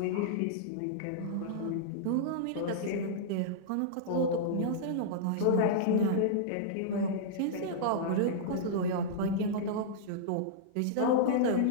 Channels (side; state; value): both; different; correlation -0.03